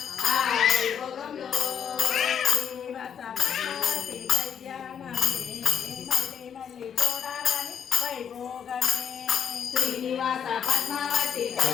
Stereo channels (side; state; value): right; quieter; 8.1 dB